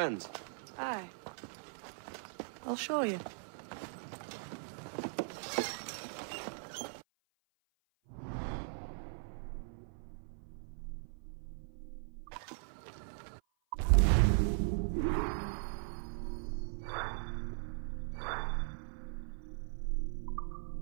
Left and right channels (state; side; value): silent; left; 52 dB below the other